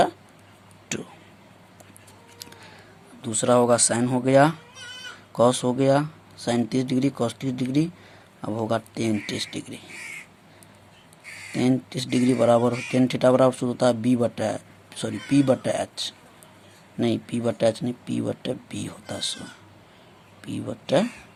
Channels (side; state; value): both; identical; correlation 1.00